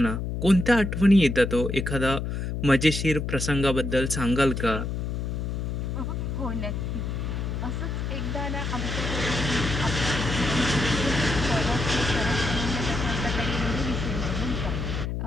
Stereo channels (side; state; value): left; noise; hum, 3 dB below the sound